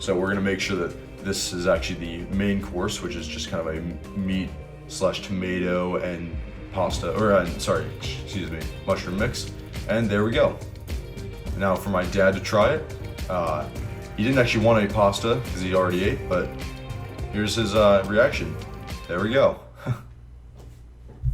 we're going to make sure that this is actually the main course, which is just kind of a meat / tomato and pasta, mushroom mix. And there we go. Now for my dad to try it. He didn't actually want any pasta because he already ate, but here's his reaction. There we go.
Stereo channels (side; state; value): both; identical; correlation 1.00